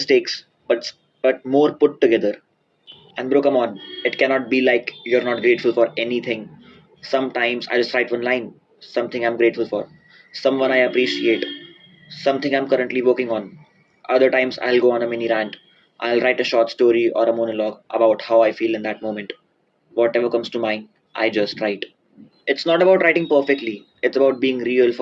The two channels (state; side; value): identical; both; correlation 1.00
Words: but more put together. And bro, come on, it cannot be like you're not grateful for anything. Sometimes I just write one line, something I'm grateful for, someone I appreciate, something I'm currently working on. Other times I'll go on a mini rant. I'll write a short story or a monologue about how I feel in that moment. Whatever comes to mind, I just write. It's not about writing perfectly, it's about being real